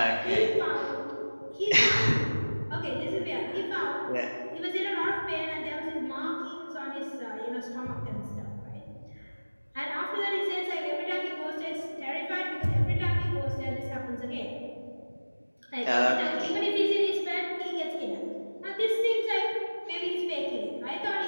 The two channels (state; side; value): inverted; both; correlation -1.00